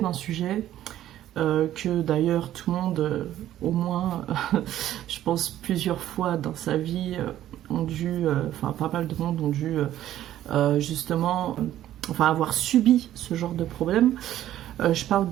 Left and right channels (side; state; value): left; quieter; 12.7 dB